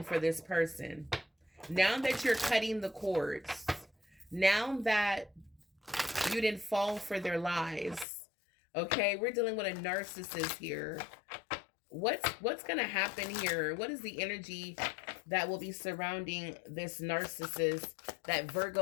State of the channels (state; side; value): drops out; right; at 8.1 s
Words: for this person. Now that you're cutting the cords, now that you didn't fall for their lies. Okay, we're dealing with a narcissist here. What's gonna happen here? What is the energy that will be surrounding this narcissist that